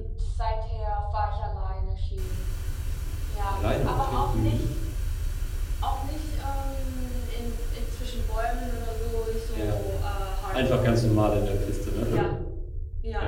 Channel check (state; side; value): identical; both; correlation 1.00